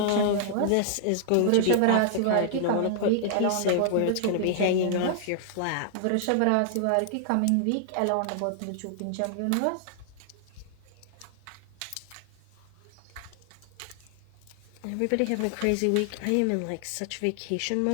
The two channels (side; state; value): both; different; correlation -0.01